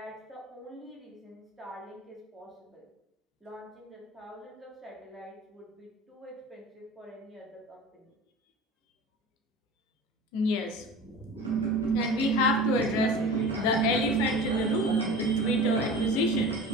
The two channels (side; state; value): both; normal; correlation 0.36